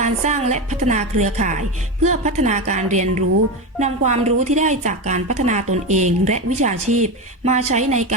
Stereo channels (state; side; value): normal; both; correlation 0.17